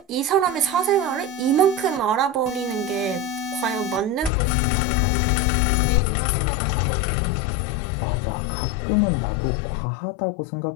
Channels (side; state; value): right; drops out; at 4.3 s